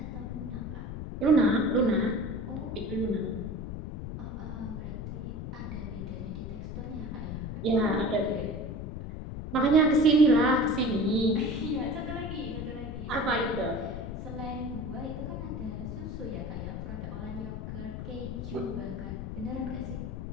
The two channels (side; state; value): left; noise; rumble, 6 dB below the sound